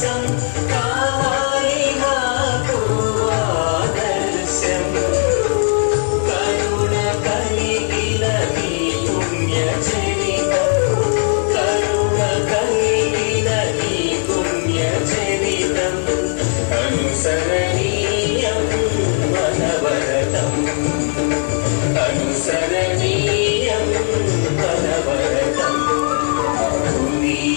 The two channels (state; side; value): silent; right; 61 dB below the other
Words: కావాలి నాకు ఆదర్శం కరుణ కలిగిన నీ పుణ్య చరితం కరుణ కలిగిన నీ పుణ్య చరితం అనుసరణీయం వనవరతం అనుసరణీయం వనవరతం